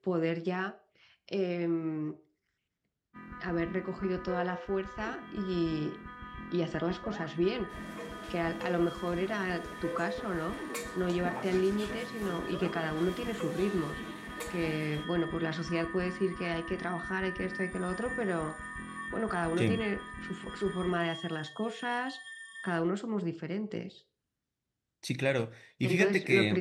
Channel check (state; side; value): identical; both; correlation 1.00